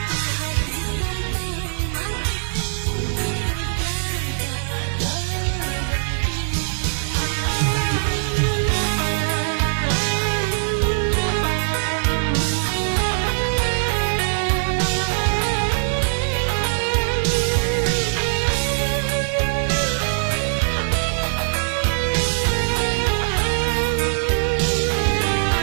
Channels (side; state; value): left; silent; 61 dB below the other